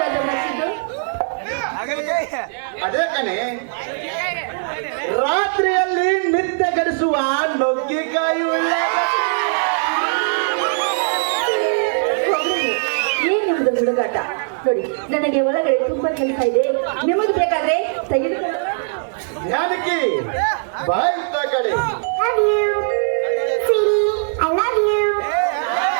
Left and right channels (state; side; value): silent; left; 66 dB below the other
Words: ಮತ್ತಿದ್ದು? ಅದೇ ಕಣೆ, ರಾತ್ರಿಯಲ್ಲಿ ನಿದ್ದೆ ಗಡಿಸುವ ನುಗ್ಗಿಕಾಯಿ ಏನಿದೆ ಹುಡುಗಾಟ? ನೋಡಿ, ನನಗೆ ಒಳಗಡೆ ತುಂಬಾ ಕೆಲಸ ಇದೆ. ನಿಮಗೆ ಬೇಕಾದ್ರೆ ತೆಗೆದುಕೊಂಡು. ಜಾನಕಿ, ಬಾಯ್ತಾ ಕಡೆ.